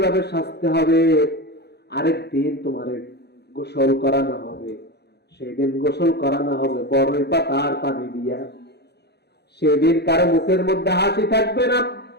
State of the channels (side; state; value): right; late; 0.48 ms